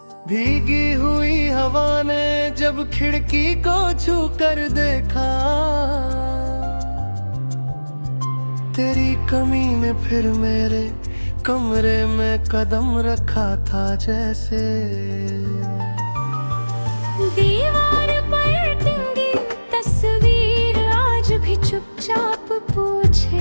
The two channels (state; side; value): inverted; both; correlation -1.00